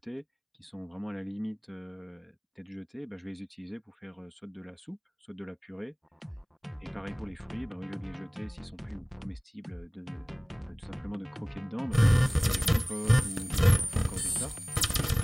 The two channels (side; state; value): both; identical; correlation 1.00